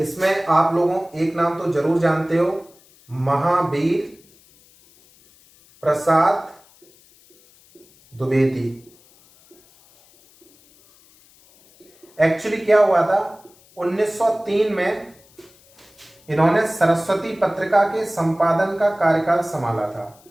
आप लोगों एक नाम तो जरूर जानते हो, महावीर प्रसाद द्विवेदी। एक्चुअली क्या हुआ था, 1903 में इन्होंने सरस्वती पत्रिका के संपादन का कार्यकाल संभाला था।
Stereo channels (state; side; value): noise; left; hiss, 29 dB below the sound